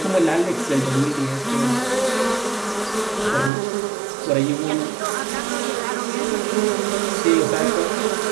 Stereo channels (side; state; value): left; drops out; at 3.5 s